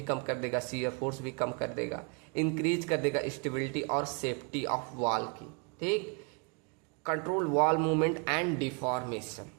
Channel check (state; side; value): quieter; left; 34.6 dB